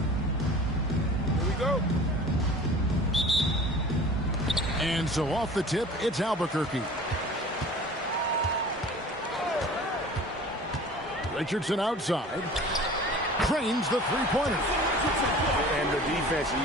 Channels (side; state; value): both; normal; correlation 0.43